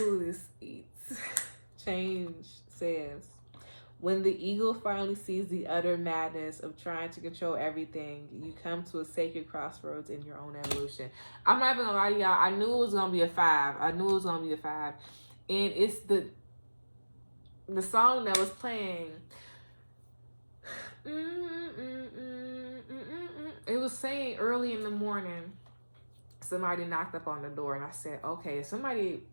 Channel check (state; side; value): inverted; both; correlation -1.00